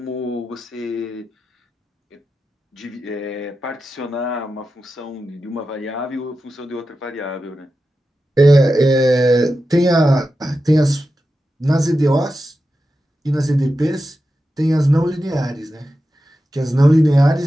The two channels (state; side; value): normal; both; correlation 0.91